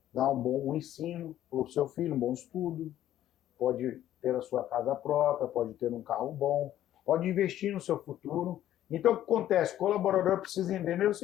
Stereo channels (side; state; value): right; quieter; 12.4 dB